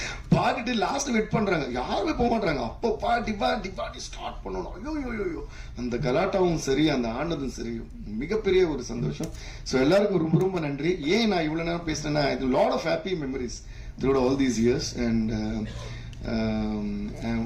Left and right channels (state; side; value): identical; both; correlation 1.00